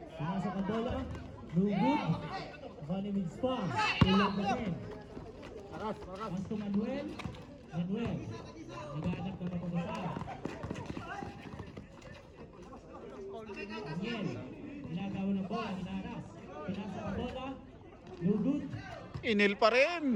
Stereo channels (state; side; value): identical; both; correlation 1.00